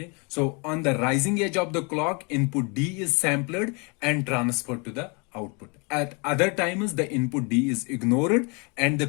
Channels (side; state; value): right; quieter; 31.9 dB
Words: so on the rising edge of the clock, input D is sampled and transferred to the output. At other times, the input D is ignored and the